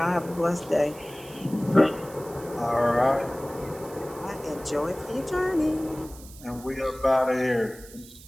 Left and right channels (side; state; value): right; noise; hiss, 19 dB below the sound